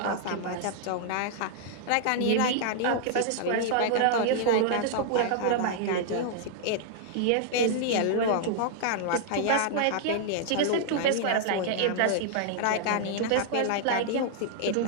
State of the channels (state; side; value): different; both; correlation -0.01